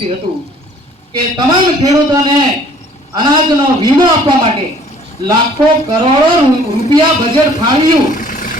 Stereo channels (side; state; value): both; normal; correlation 0.56